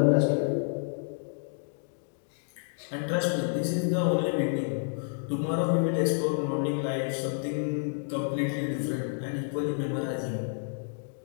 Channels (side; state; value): right; silent; digital silence